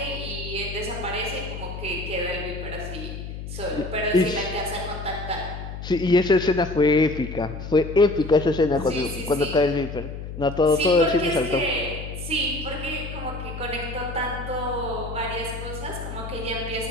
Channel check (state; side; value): noise; left; hum, 8 dB below the sound